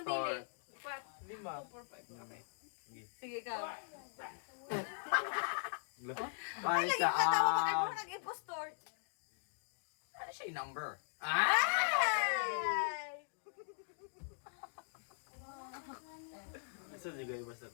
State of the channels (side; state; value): right; silent; digital silence